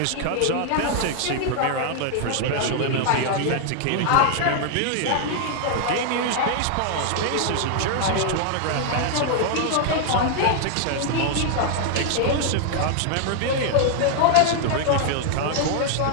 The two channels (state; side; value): different; both; correlation 0.00